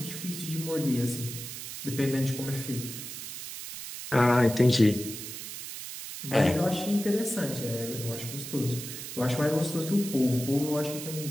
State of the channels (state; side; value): noise; right; hiss, 9 dB below the sound